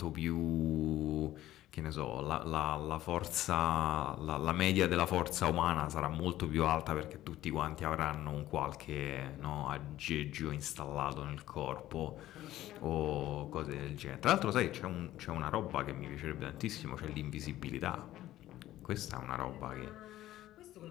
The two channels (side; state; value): right; quieter; 14.3 dB